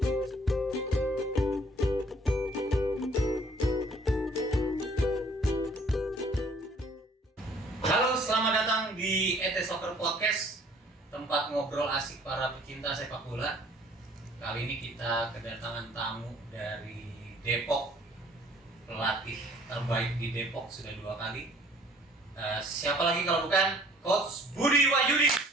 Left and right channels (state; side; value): normal; both; correlation 0.56